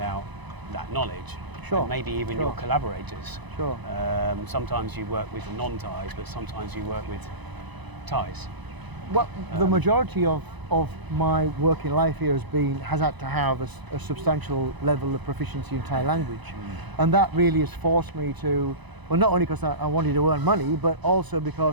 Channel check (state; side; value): late; left; 1.0 ms